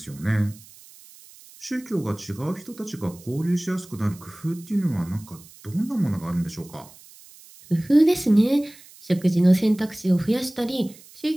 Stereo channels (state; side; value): noise; right; hiss, 22 dB below the sound